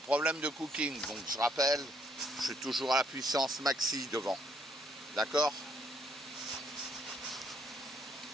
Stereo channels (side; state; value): both; normal; correlation 0.71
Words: de cooking, donc je rappelle, je suis toujours à la puissance maxi devant. D'accord